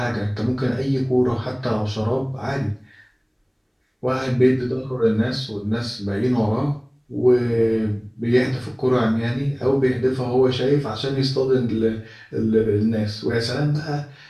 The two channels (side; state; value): both; identical; correlation 1.00